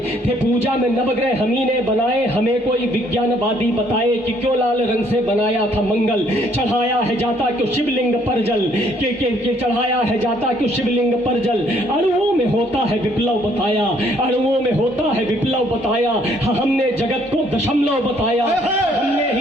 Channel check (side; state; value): both; normal; correlation 0.65